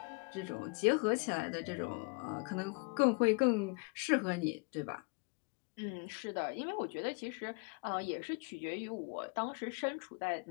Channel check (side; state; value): right; quieter; 31.8 dB